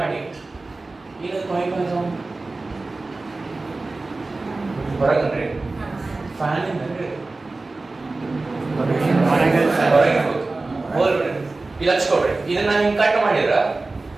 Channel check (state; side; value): quieter; left; 3.4 dB